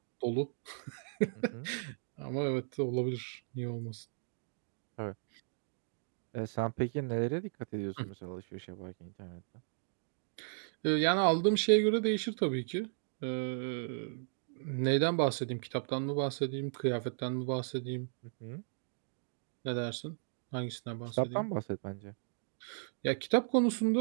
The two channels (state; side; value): silent; left; digital silence